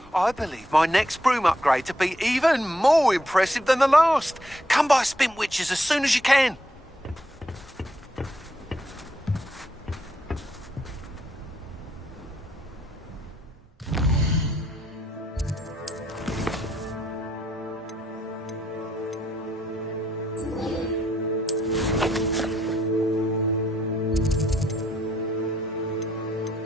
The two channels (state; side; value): normal; both; correlation 0.75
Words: I believe my next broom upgrade to be even more impressive than the last. Come by Spintwitches as soon as you can.